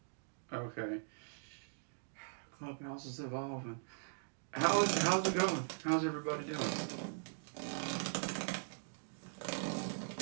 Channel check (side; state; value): left; silent; digital silence